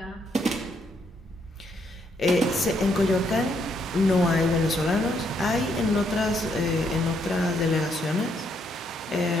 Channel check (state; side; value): normal; both; correlation 0.74